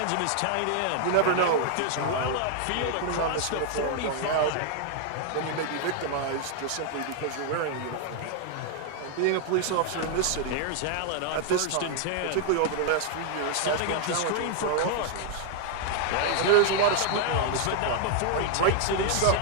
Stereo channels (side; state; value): both; different; correlation 0.00